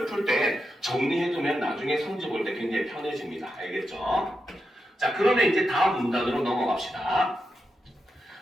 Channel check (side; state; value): both; normal; correlation 0.87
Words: 풀 때 정리해두면 나중에 성질 볼 때 굉장히 편해집니다. 알겠죠? 자, 그러면 이제 다음 문단으로 넘어갑시다.